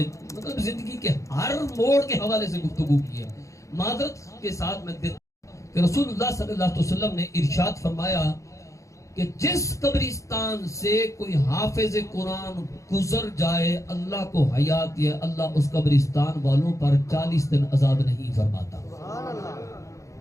مطلب زندگی کے ہر موڑ کے حوالے سے گفتگو کی ہے۔ معذرت کے ساتھ میں کہ رسول اللہ صلی اللہ علیہ وسلم نے ارشاد فرمایا کہ جس قبرستان سے کوئی حافظ قرآن گزر جائے اللہ کو حیات یہ اللہ اس قبرستان والوں پر 40 دن عذاب نہیں فرماتا۔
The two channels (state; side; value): late; right; 0.15 ms